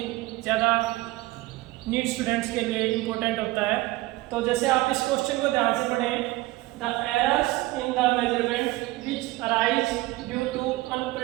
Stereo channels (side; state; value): left; quieter; 19.4 dB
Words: ज़्यादा नीट स्टूडेंट्स के लिए इम्पोर्टेंट होता है। तो जैसे आप इस क्वेश्चन को ध्यान से पढ़ें, the errors in the measurement which arise due to